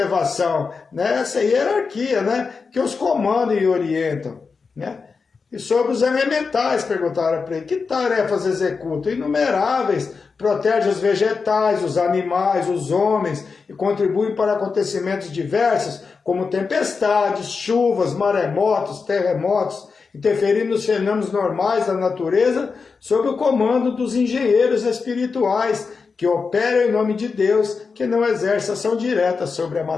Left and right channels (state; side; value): quieter; right; 4.9 dB